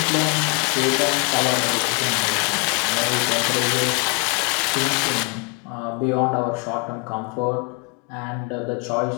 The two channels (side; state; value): right; quieter; 32.5 dB